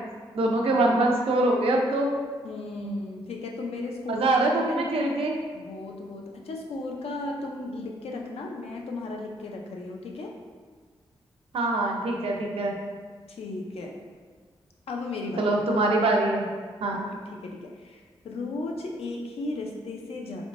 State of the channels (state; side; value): normal; both; correlation 0.62